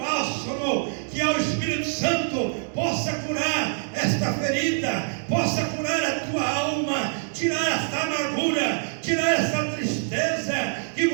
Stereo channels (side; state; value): left; silent; digital silence